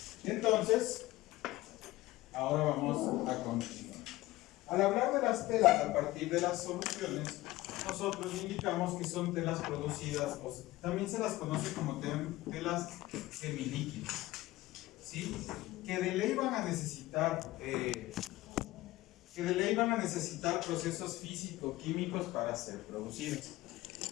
Entonces, ahora vamos a continuar. Al hablar de las telas a partir de las soluciones, nosotros indicamos que son telas producidas, o también se las conoce como telas semilíquidas, ¿sí? Que de ley van a necesitar procesos físico-químicos para ser producidas.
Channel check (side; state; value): right; quieter; 18.0 dB